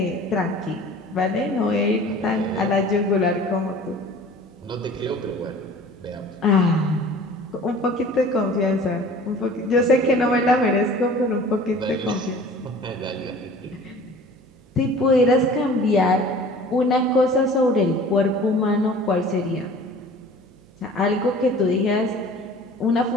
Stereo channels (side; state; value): right; noise; hum, 28 dB below the sound